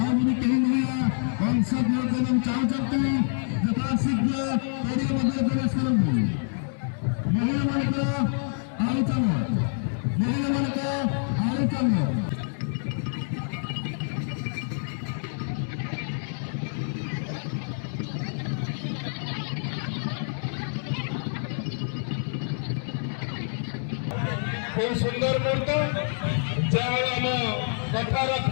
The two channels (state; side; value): silent; right; digital silence